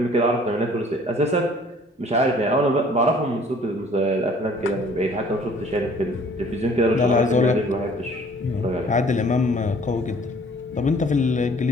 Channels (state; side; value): normal; both; correlation 0.54